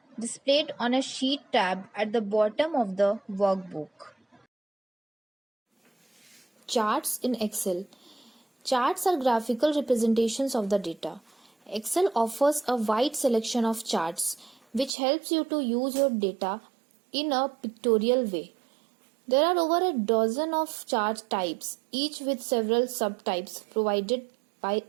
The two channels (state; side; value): drops out; left; at 15.0 s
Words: displayed on a sheet tab at the bottom of the workbook. Charts in Excel. Charts are graphical representations of the data. Excel offers a wide selection of charts which helps you to use your data in a pictorial way. There are over a dozen of chart types, each with several subtypes provided by